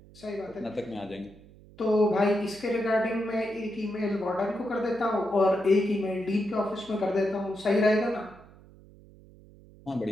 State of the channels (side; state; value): right; noise; hum, 23 dB below the sound